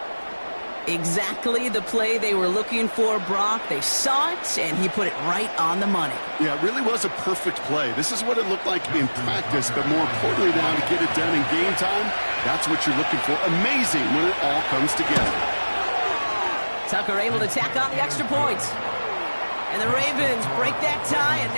Exactly the play they were looking for, Brock. They saw it, and he put it right on the money. Yeah, it really was a perfect play. This is what it looked like in practice, but more importantly now to get it done in game time, that's what you're looking for. Amazing when it all comes together. Tucker able to tack on the extra points. And the Ravens break that tie and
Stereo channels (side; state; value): both; inverted; correlation -1.00